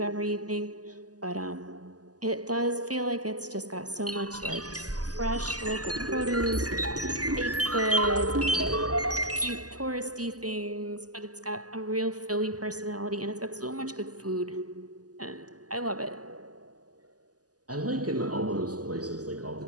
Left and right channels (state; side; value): late; left; 0.67 ms